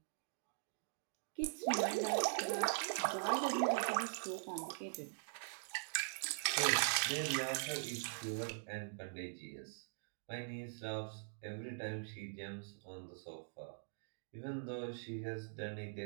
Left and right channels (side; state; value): left; silent; digital silence